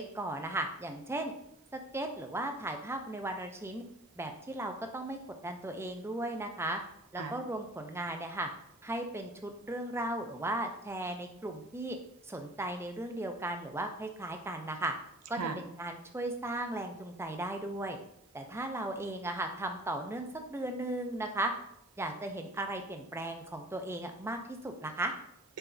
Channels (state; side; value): noise; right; hiss, 29 dB below the sound